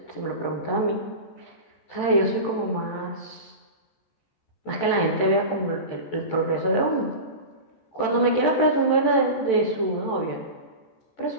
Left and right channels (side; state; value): right; late; 14 ms